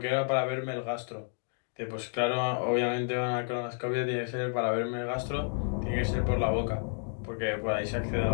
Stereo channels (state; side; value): silent; right; 57 dB below the other